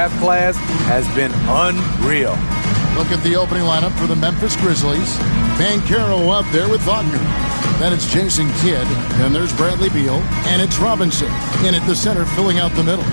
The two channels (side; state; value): both; inverted; correlation -1.00